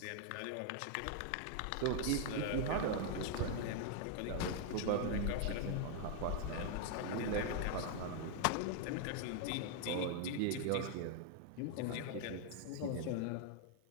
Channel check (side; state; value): both; different; correlation 0.00